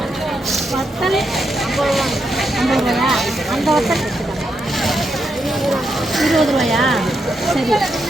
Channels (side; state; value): both; normal; correlation 0.82